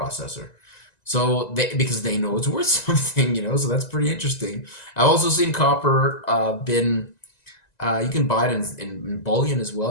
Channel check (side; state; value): right; late; 1.9 ms